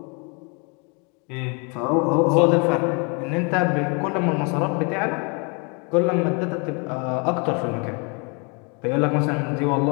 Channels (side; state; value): right; quieter; 33.5 dB